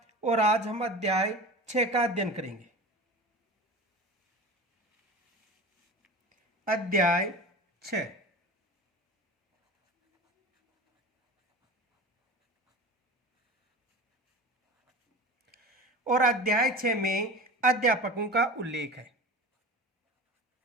और आज हम अध्याय 6 का अध्ययन करेंगे। अध्याय 6। और अध्याय 6 में अध्यापकों का उल्लेख है।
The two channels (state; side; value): normal; both; correlation 0.33